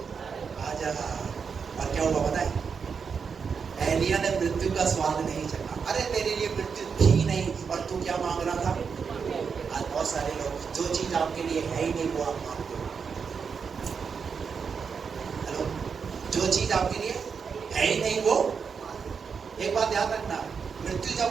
आ जा। और क्या हुआ पता है? एलिया ने मृत्यु का स्वाद नहीं चखा। अरे तेरे लिए मृत्यु थी नहीं, और तू क्या मांग रहा था? आज बहुत सारे लोग जो चीज आपके लिए है ही नहीं वो आप मांगते हो। हेलो, जो चीज आपके लिए है ही नहीं वो, एक बात याद रखना, मृत्यु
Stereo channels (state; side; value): quieter; left; 6.0 dB